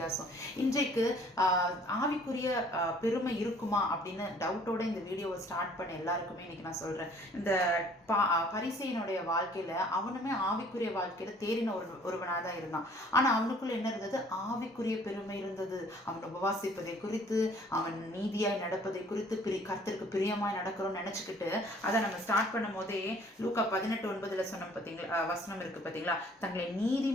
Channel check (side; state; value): both; normal; correlation 0.56